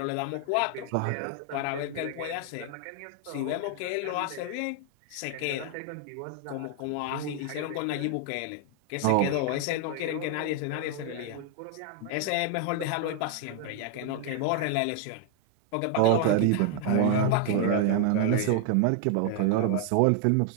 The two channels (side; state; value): both; different; correlation 0.00